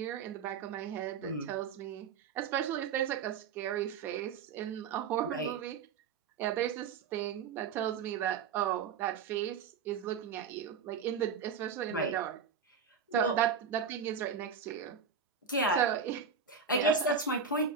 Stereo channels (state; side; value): quieter; left; 6.3 dB